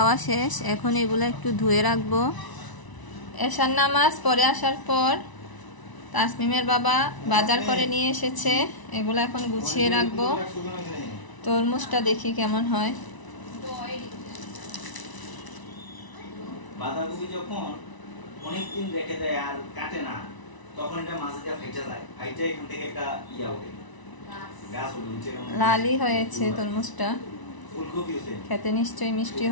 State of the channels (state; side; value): late; right; 1.0 ms